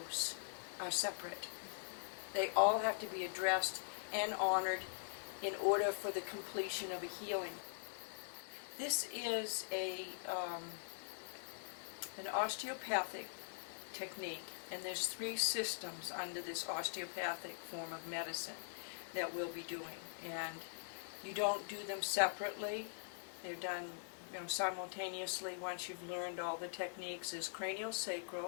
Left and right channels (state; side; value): silent; right; digital silence